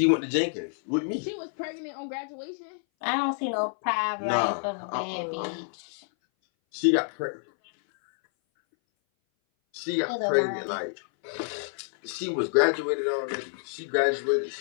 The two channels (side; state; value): right; silent; 58 dB below the other